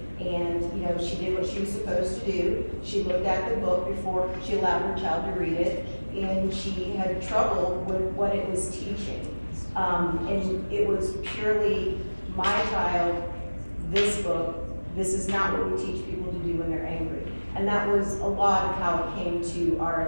And, she did what she was supposed to do. She looked at the book before she allowed her child to read it, and she had trouble with what it was teaching. And it was purely, my child, this book, this is not what we teach people to do when they're angry. And that was a lot of how it came to our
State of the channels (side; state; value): both; inverted; correlation -1.00